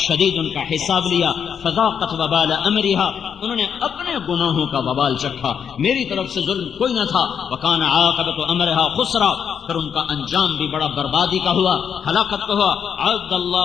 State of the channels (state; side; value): quieter; right; 7.6 dB